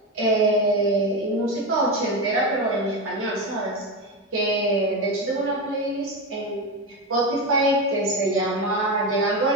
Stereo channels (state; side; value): normal; both; correlation 0.16